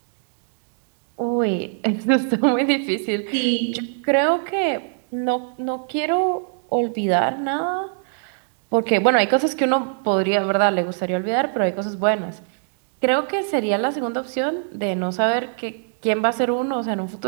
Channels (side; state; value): left; silent; 64 dB below the other